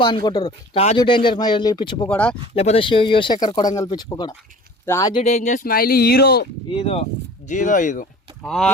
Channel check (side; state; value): both; normal; correlation 0.44